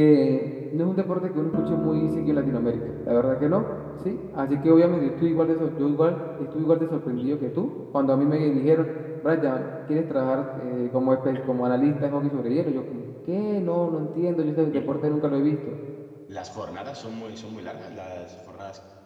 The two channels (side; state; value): both; identical; correlation 1.00